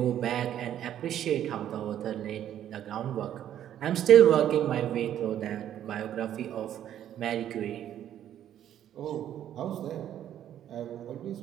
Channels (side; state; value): left; quieter; 10.9 dB